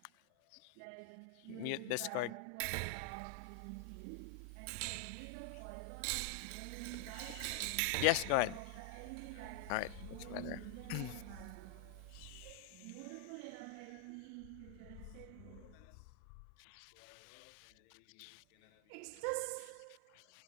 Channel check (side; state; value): both; different; correlation 0.00